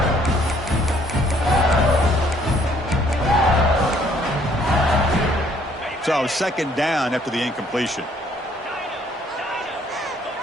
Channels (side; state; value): both; normal; correlation 0.63